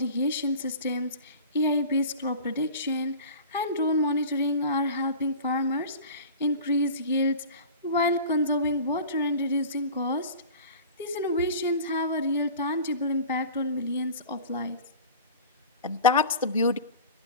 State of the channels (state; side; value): inverted; both; correlation -0.38